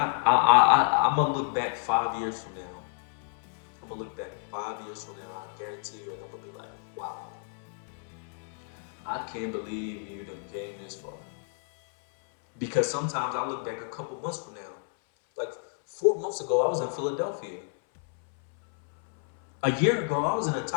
gonna look back 5 years from now. I'm gonna look back 5 years from now. I guarantee you, and I'm gonna be like, wow, I can't believe you done came this far. Because sometimes I look back a couple months from now. Like 4 months ago, I was in Philadelphia. A year ago, I was in a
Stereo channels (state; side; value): silent; right; 57 dB below the other